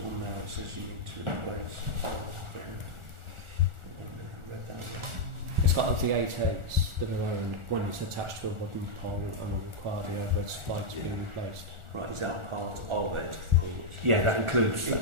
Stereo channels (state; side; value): late; left; 1.4 ms